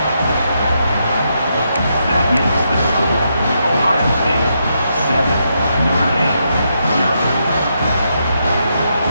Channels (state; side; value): inverted; both; correlation -0.80